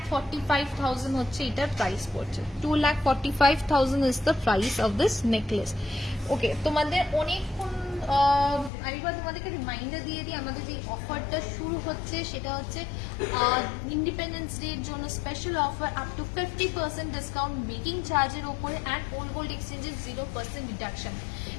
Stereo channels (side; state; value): right; drops out; at 8.7 s